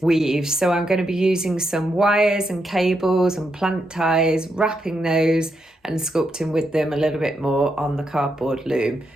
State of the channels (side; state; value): both; normal; correlation 0.82